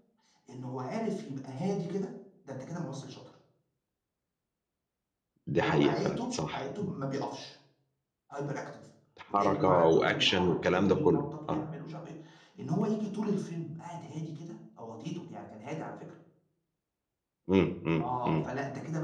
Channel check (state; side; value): identical; both; correlation 1.00